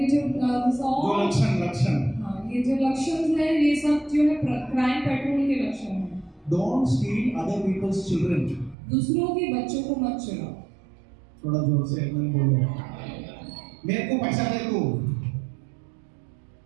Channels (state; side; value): drops out; left; at 8.8 s